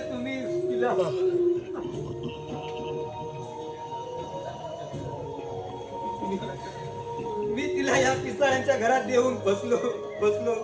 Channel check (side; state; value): both; identical; correlation 1.00